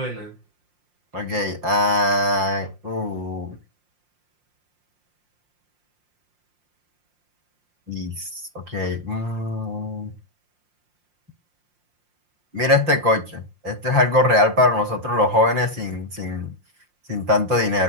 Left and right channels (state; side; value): late; left; 5.6 ms